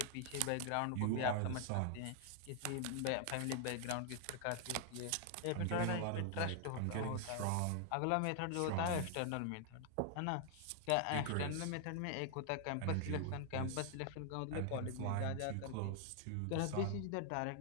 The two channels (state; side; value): different; both; correlation 0.00